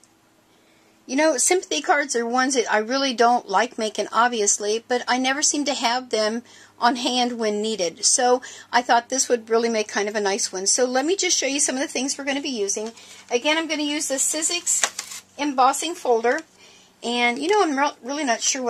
You know, sympathy cards are ones that I really don't like making, obviously, but I never seem to have them on hand when needed. So I thought this would really make kind of a nice one. So let me just show you some of the things we're going to be using. Again, I'm going to use the Sizzix embossing folder. And, you know, I'm really not sure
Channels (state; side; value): identical; both; correlation 1.00